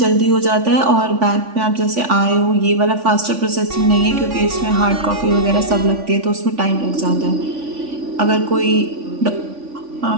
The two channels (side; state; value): left; late; 3.5 ms